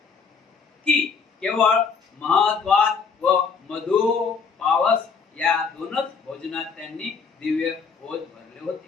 की केवळ महत्वात व मधु पावस या दोनच भोजनात त्यांनी दिव्य भोज भरले होते.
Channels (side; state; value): right; quieter; 5.5 dB